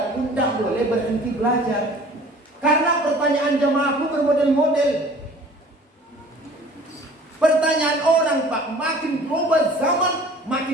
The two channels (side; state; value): both; normal; correlation 0.48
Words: pun tak boleh berhenti belajar. Karena pertanyaan jamaahku bermodel-model. Pertanyaan orang, Pak, makin berubah zaman,